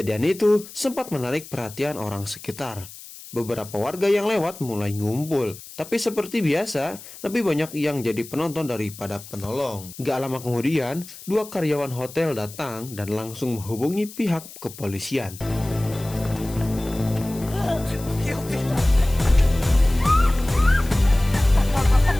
itu sempat menarik perhatian orang sekitar. Beberapa warga yang lewat mulai ngumpul, tapi seperti biasa, lebih banyak yang jadi penonton daripada penolong. Gak lama kemudian, dua karyawan hotel datang dan langsung menghubungi pihak kepolisian.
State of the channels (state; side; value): noise; left; hiss, 16 dB below the sound